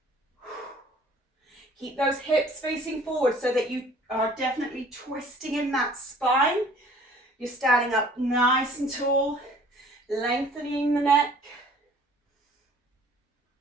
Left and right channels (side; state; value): both; normal; correlation 0.52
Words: Keep those hips facing forward so that you are definitely twisting in that spine. You're standing up nice and tall, lengthening the neck.